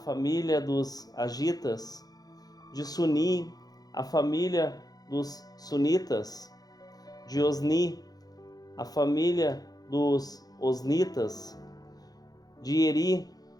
dos Agitas, de Suni, a família dos Sunitas, de Osni, a família dos Osnitas, de Eri,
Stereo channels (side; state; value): right; late; 0.19 ms